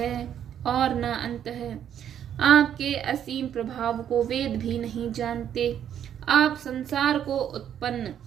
और न अंत है। आपके असीम प्रभाव को वेद भी नहीं जानते। आप संसार को उत्पन्न,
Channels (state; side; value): quieter; left; 9.6 dB